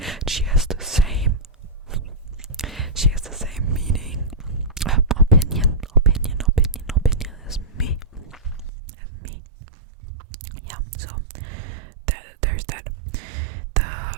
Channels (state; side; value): drops out; left; at 8.7 s